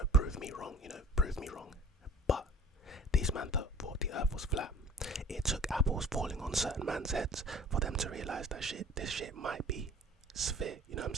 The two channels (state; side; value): normal; both; correlation 0.45